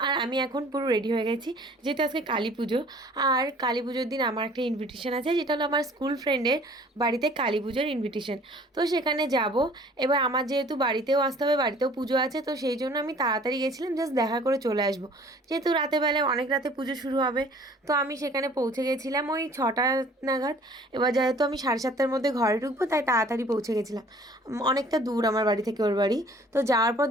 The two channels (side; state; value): both; normal; correlation 0.52